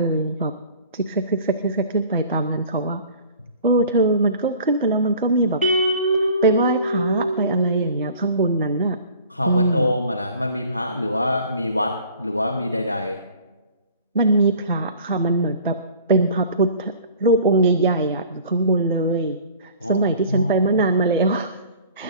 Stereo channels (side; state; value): both; inverted; correlation -0.48